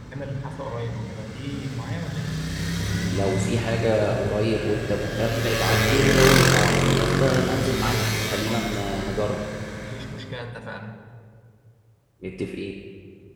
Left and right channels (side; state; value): both; identical; correlation 1.00